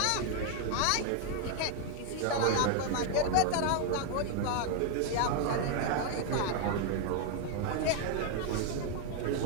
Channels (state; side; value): different; both; correlation 0.00